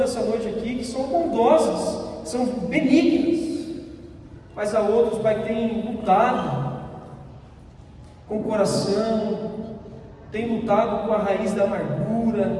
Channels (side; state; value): both; identical; correlation 1.00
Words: noite aqui que são bondosas, que são benignas, mas há outros, Pai, que têm lutado com o coração, têm lutado com a raiz da